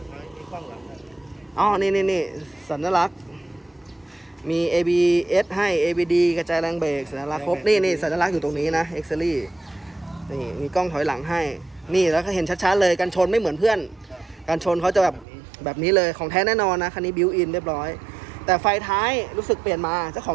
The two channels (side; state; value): left; drops out; at 15.2 s